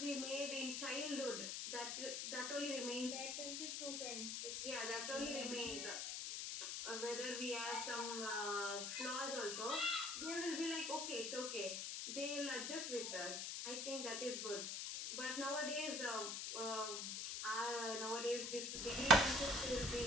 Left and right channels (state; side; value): noise; left; hiss, 3 dB below the sound